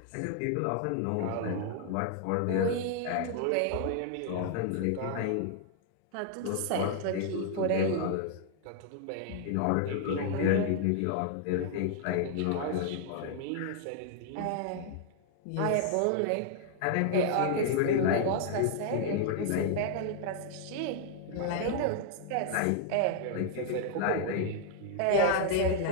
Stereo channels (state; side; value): different; both; correlation 0.00